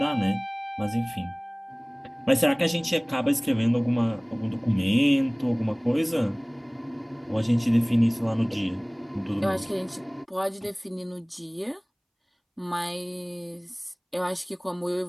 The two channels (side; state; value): both; identical; correlation 1.00